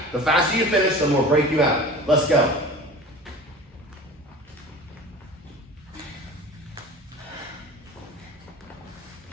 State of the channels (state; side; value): normal; both; correlation 0.38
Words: The faster you finish, the more break you have. Let's go.